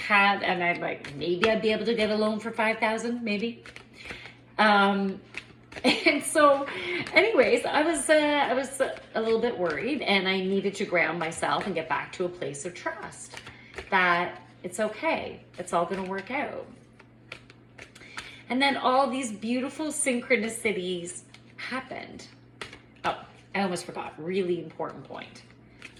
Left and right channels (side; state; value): both; identical; correlation 1.00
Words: and I'm like, maybe I'd be able to get a loan for $5,000, maybe. And so anyways, I was a little bit worried, and I needed to ground myself and get back to a place of trust that it's okay. It's all going to work out. And then all these beautiful synchronicities happened. Oh, I almost forgot, really important point.